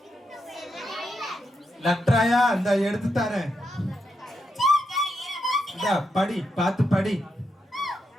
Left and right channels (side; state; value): both; normal; correlation 0.83